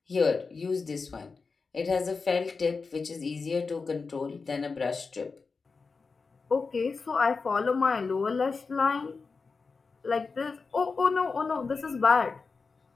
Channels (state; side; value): quieter; right; 4.6 dB